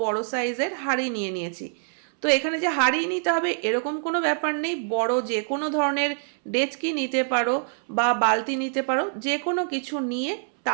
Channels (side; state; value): left; silent; 62 dB below the other